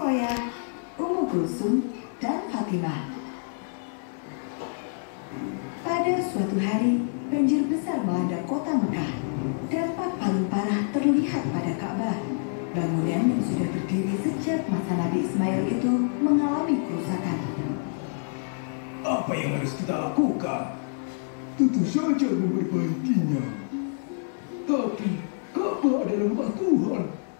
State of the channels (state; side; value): silent; right; digital silence